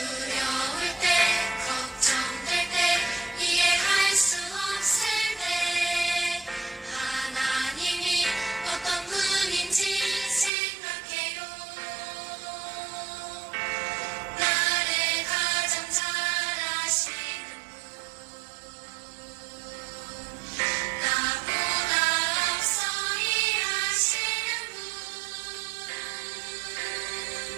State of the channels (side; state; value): left; drops out; at 10.5 s